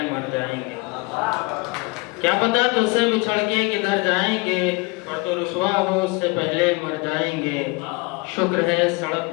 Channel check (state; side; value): quieter; right; 27.3 dB